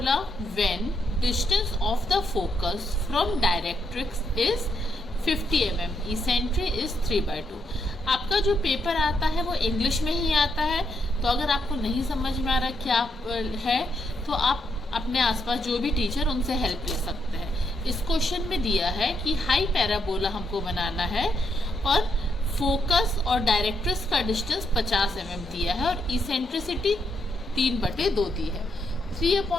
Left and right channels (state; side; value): normal; both; correlation 0.78